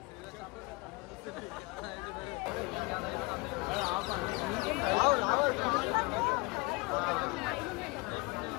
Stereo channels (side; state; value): right; quieter; 25.6 dB